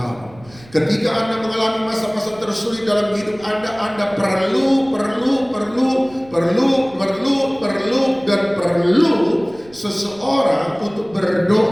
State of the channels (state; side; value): noise; right; rumble, 24 dB below the sound